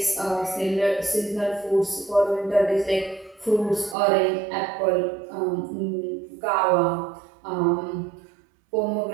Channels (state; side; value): drops out; left; at 4.0 s